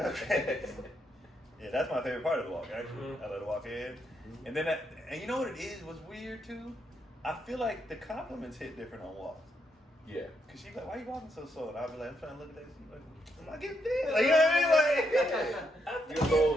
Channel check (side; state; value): both; normal; correlation 0.78